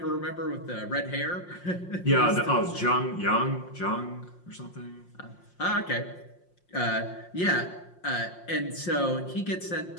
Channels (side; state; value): right; late; 5.6 ms